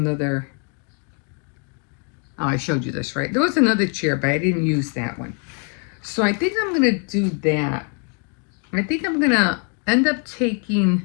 oh, I showed you this, right? There was another chair, but I didn't use that one. So I think I'm going to do that. I think I'm going to end up taking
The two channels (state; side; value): quieter; right; 39.3 dB